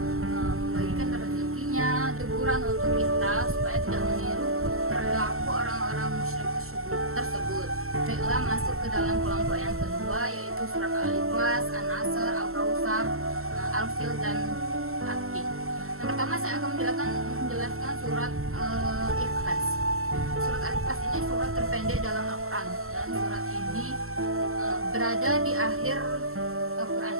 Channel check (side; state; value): left; late; 0.62 ms